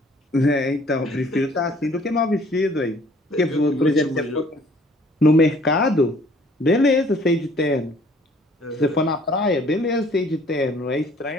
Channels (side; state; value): both; normal; correlation 0.57